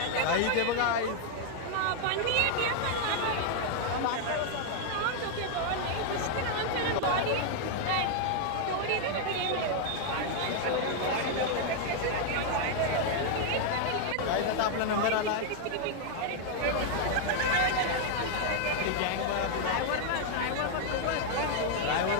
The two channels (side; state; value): both; different; correlation 0.00